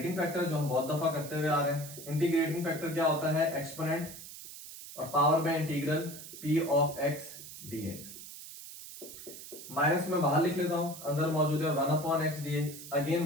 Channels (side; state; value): right; noise; hiss, 13 dB below the sound